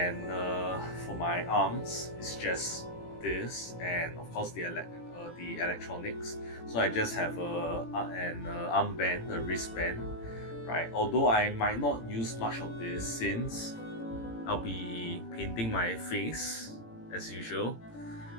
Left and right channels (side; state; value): right; late; 18 ms